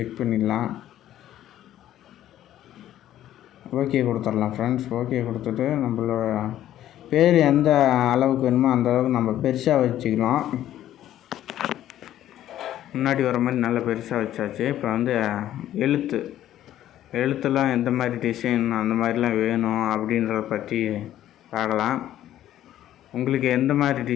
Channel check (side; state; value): right; quieter; 12.4 dB